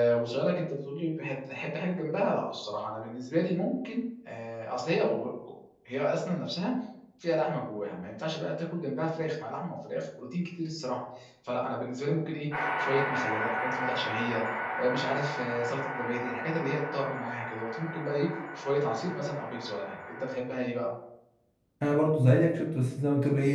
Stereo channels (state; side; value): identical; both; correlation 1.00